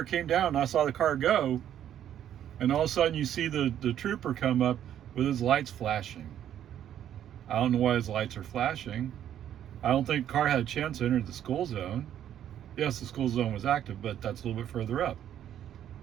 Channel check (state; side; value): quieter; left; 10.5 dB